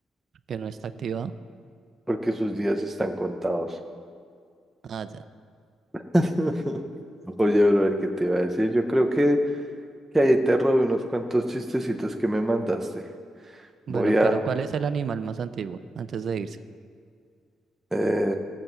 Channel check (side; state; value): both; normal; correlation 0.92